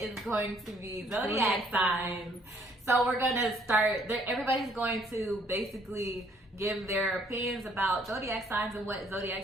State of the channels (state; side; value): normal; both; correlation 0.64